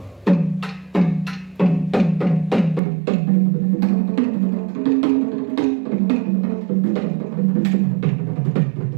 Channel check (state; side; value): drops out; left; at 2.8 s